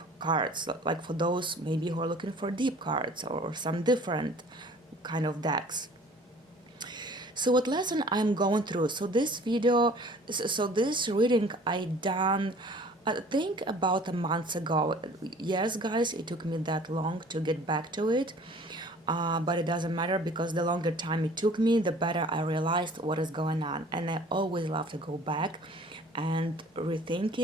cards, like for those maybe who are looking for deep cards or some different kind of decks. So what lesson I'm going through? So this reading I done, I think about a month ago. Yes, guys, it took me that long to get back to it, but it doesn't matter, because the longer time it took me, the better I realized what is going on. And I always love to go back and rethink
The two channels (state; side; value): normal; both; correlation 0.49